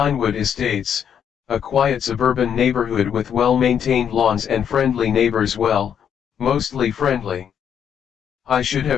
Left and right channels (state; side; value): quieter; right; 8.4 dB